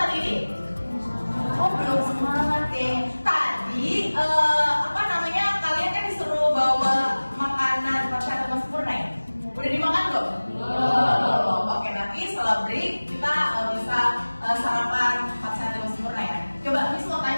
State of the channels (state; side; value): inverted; both; correlation -1.00